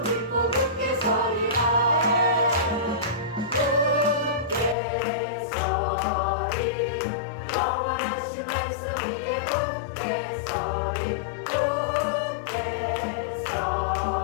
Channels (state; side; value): drops out; right; at 4.8 s